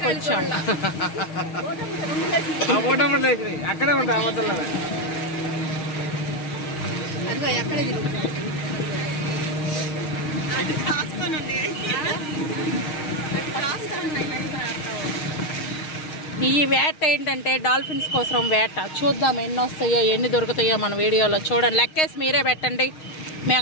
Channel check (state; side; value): late; right; 6.4 ms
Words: వచ్చాము. అక్కడే ఉంటాయి ఈ వేట ఏంటంటే డాల్ఫిన్స్ కోసం వేట. చూద్దాం ఎన్ని వస్తాయో ఎన్ని దొరుకుతాయో మన వీడియోలో. చూడండి, లెక్కేసి మీరే పెట్టండి.